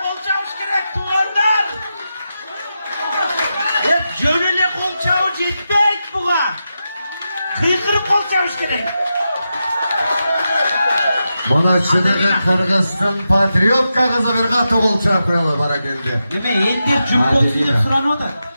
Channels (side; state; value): both; inverted; correlation -0.89